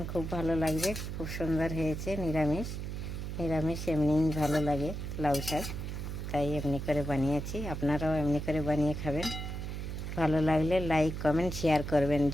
খুব ভালো লাগবে। খুব সুন্দর হয়েছে। নিরামিষ নিরামিষ এমনিই ভালো লাগে লাউ শাক, তাই এমনি করে বানিয়েছি। আপনারাও এমনি করে বানিয়ে খাবেন। ভালো লাগলে লাইক কমেন্ট শেয়ার করবেন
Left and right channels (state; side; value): noise; right; hum, 5 dB below the sound